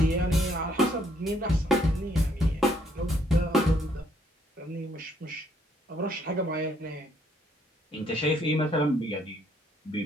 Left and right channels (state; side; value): normal; both; correlation 0.68